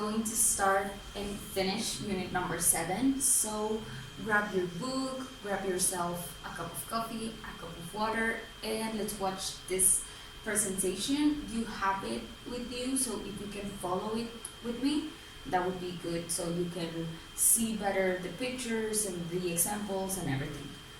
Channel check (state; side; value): identical; both; correlation 1.00